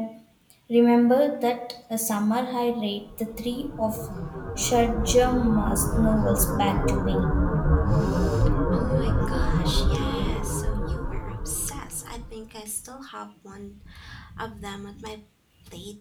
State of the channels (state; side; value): identical; both; correlation 1.00